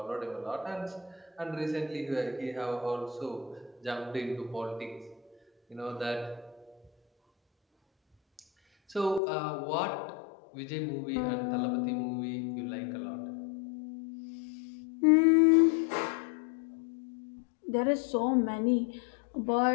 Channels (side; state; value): right; drops out; at 9.2 s